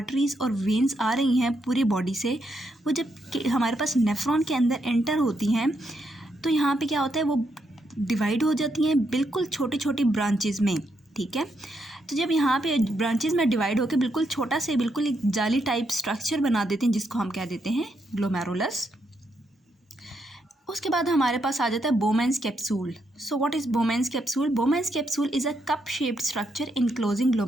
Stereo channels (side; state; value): both; normal; correlation 0.79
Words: और वेन्स आ रही हैं पूरी बॉडी से, वो जब हमारे पास नेफ्रॉन के अंदर एंटर होती हैं तो यहाँ पे क्या होता है, वो डिवाइड हो जाती हैं बिल्कुल छोटी छोटी ब्रांचेज में। ठीक है, तो जब यहाँ पे ब्रांचेज में डिवाइड होकर बिल्कुल छोटा से बिल्कुल एक जाली टाइप स्ट्रक्चर बना देते हैं जिसको हम कह देते हैं ग्लोमेरुलस। उसके बाद हमारे पास आ जाता है Bowman's capsule. So what is Bowman's capsule? Bowman's capsule is a cup shaped structure enclosing